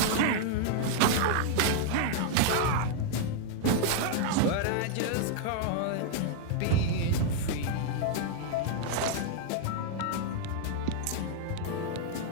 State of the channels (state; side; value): different; both; correlation 0.00